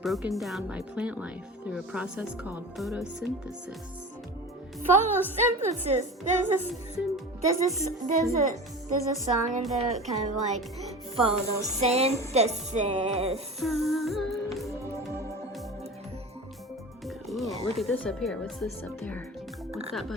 down by plant life through a process called photosynthesis. Photosynthesis. There's a song in there kind of like photosynthesis. Cool. Look at this up here. What's this up there? What's that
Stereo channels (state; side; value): normal; both; correlation 0.33